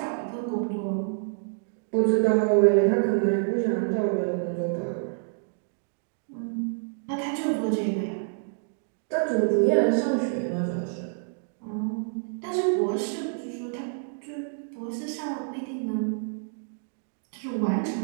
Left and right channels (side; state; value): left; silent; digital silence